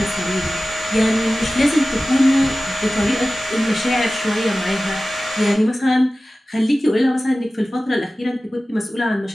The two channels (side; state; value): both; normal; correlation 0.96